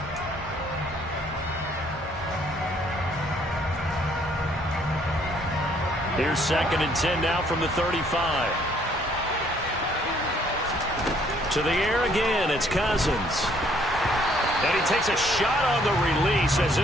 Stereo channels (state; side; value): normal; both; correlation 0.64